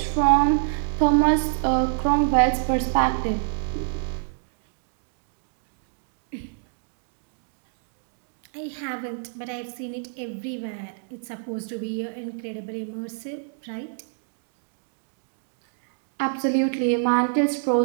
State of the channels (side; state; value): left; silent; digital silence